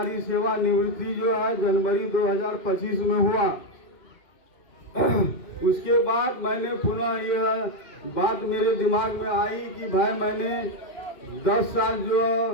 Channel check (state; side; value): late; right; 2.6 ms